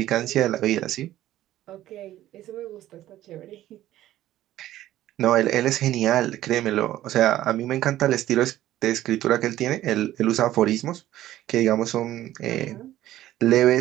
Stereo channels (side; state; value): left; quieter; 13.9 dB